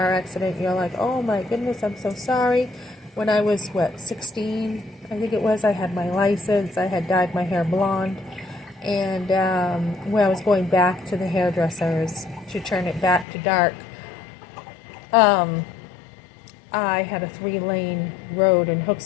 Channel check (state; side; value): drops out; right; at 13.2 s